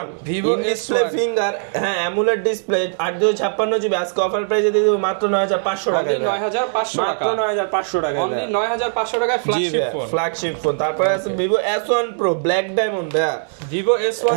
Vivo display S1 finger, হ্যাঁ অ্যামুলেট ডিসপ্লে 8256 জিবি আজকে অফার প্রাইসে দিয়ে দেব মাত্র 9500 টাকায়। 9500 টাকা, মাত্র 9500 টাকায়। অনলি 9500 টাকায় ফ্ল্যাগশিপ ফোন। Flagship phone. তারপরে আছে Vivo S1 Pro black diamond ভাই। Vivo S1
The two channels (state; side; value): silent; left; digital silence